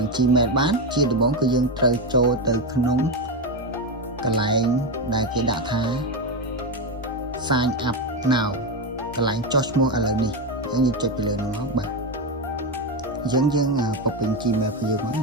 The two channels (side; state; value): both; normal; correlation 0.11